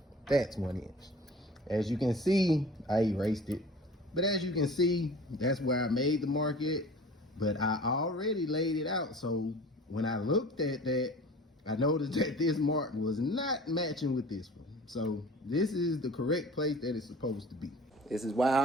That's 1 inch. As you can see, I erased it. But as you can see, that's where I made the mark at. but I already laid it out. So when I looked at that, I noticed that this mark was not matching with this one. So this is the correct place that it's supposed to be. This is why I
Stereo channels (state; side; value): normal; both; correlation 0.43